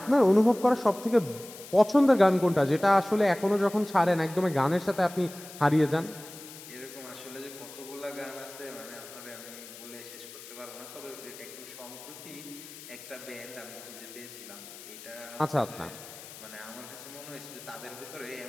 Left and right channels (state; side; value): noise; left; hiss, 15 dB below the sound